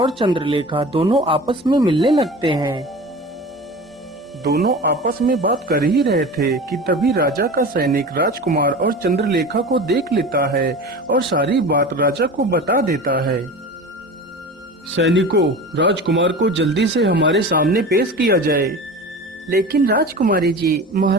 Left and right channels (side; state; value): both; normal; correlation 0.34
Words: चंद्रलेखा दोनों आपस में मिलने लगते हैं। दोनों आपस में बात कर ही रहे थे कि तभी राजा का सैनिक राजकुमार और चंद्रलेखा को देख लेता है और सारी बात राजा को बता देता है। सैनिकों, राजकुमार को जल्दी से हमारे सामने पेश किया जाए। लेकिन राजकुमारी जी,